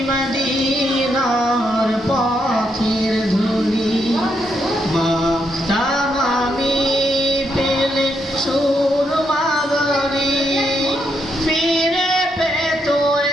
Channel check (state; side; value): normal; both; correlation 0.79